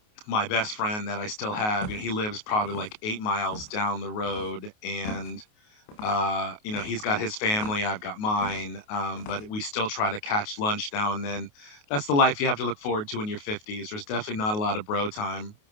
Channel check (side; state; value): right; late; 28 ms